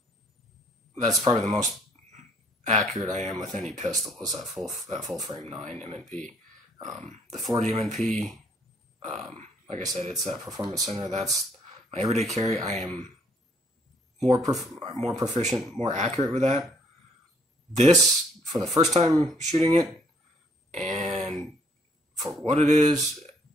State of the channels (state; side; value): normal; both; correlation 0.64